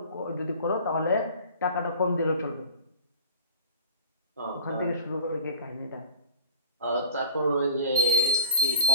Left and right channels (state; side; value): inverted; both; correlation -0.39